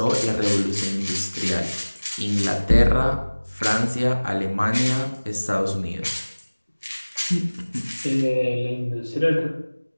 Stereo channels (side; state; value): both; inverted; correlation -1.00